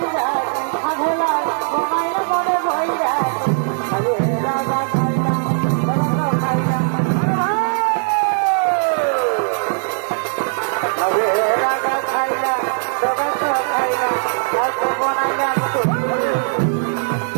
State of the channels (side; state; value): left; silent; digital silence